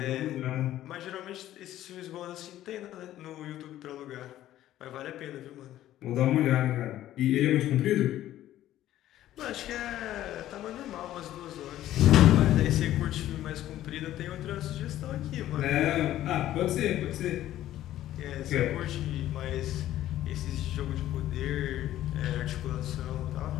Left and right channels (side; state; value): right; quieter; 13.4 dB